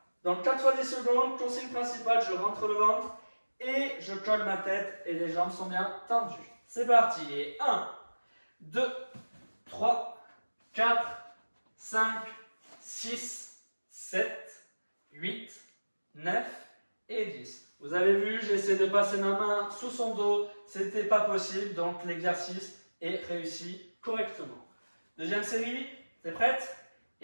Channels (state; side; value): inverted; both; correlation -1.00